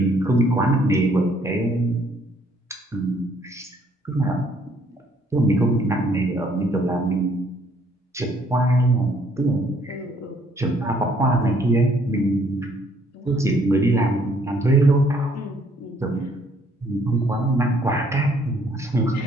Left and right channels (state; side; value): normal; both; correlation 0.65